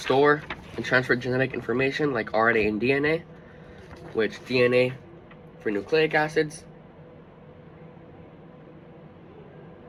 and transfer genetic information like RNA and DNA, which DNA for nucleic acids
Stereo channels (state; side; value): identical; both; correlation 1.00